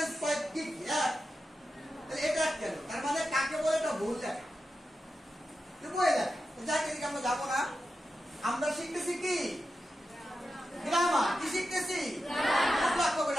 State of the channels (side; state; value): both; normal; correlation 0.90